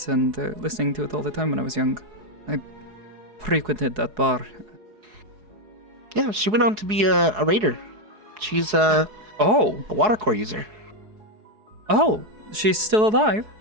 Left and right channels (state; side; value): late; left; 4.7 ms